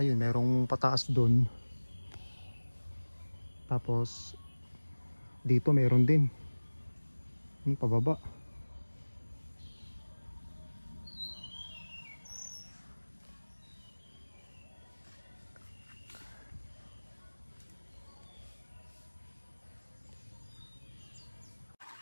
merong pataas doon. Tapos dito meron din. Yung pababa.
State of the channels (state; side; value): inverted; both; correlation -1.00